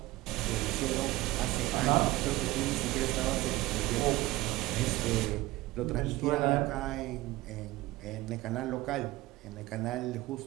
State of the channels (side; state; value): left; quieter; 18.7 dB